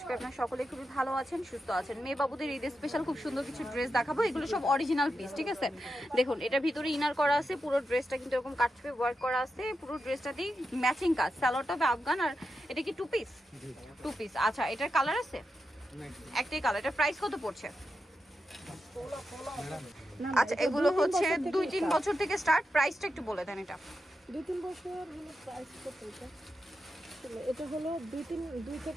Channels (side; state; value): both; normal; correlation 0.88